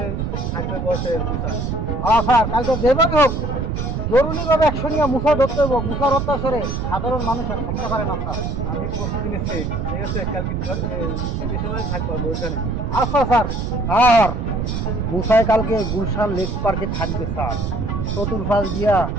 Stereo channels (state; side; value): noise; right; rumble, 2 dB below the sound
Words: থাকবে বসে মুসা। স্যার কালকে যেভাবে হোক জরুরিভাবে অ্যাকশন নিয়ে মুসা ধরতে হবে। মুসার অত্যাচারে সাধারণ মানুষ আর থাকতে পারে না স্যার। আমি প্রস্তুতি নিচ্ছি, ঠিক আছে কালকে সময় থাকবো গুলশানে। আচ্ছা স্যার। স্যার মুসাই কালকে গুলশান লেক পার্কে থাকবে স্যার, চতুর্পাশ দিয়া